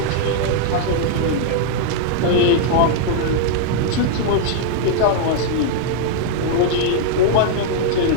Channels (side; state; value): both; different; correlation -0.01